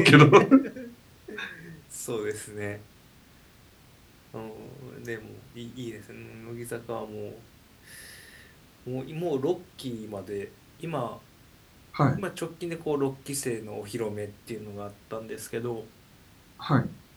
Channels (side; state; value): both; identical; correlation 1.00